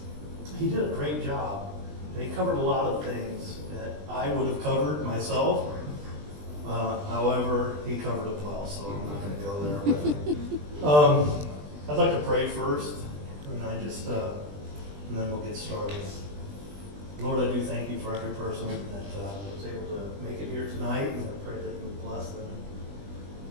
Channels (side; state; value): left; late; 20 ms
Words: He did a great job, and he covered a lot of things that I would have covered myself. However, he covered it well, so I'm not going to go there. I'd like to pray first, and then we'll get started. Lord, I do thank you for every person that was able to make it here tonight, and I pray that you would bless them,